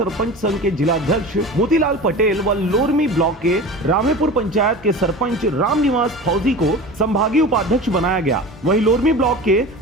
संघ के जिलाध्यक्ष मोतीलाल पटेल व लोरमी ब्लॉक के रामेपुर पंचायत के सरपंच रामनिवास फौजी को संभागीय उपाध्यक्ष बनाया गया। वहीं लोरमी ब्लॉक के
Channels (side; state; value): both; normal; correlation 0.34